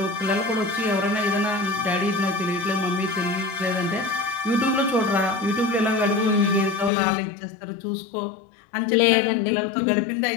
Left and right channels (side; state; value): right; drops out; at 6.9 s